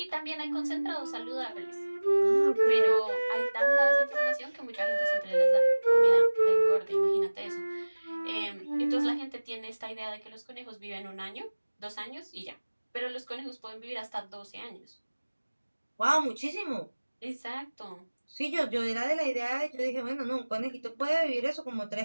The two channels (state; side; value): inverted; both; correlation -1.00